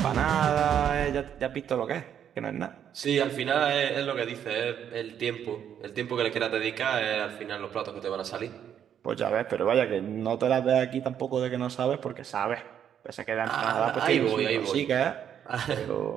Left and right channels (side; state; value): left; quieter; 9.1 dB